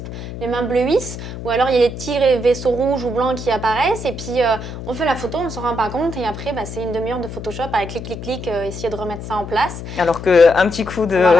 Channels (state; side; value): noise; left; hum, 9 dB below the sound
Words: les mains bleuissent ou alors il y a les petits vaisseaux rouges ou blancs qui apparaissent et puis on fait la photo, on ne s'en rend pas compte et après c'est une demi-heure de Photoshop avec clic, essayer de remettre ça en place. Alors qu'un petit coup de